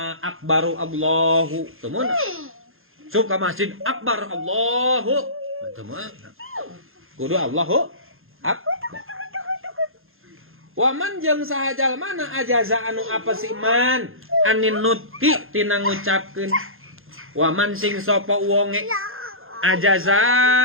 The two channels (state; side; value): late; left; 0.60 ms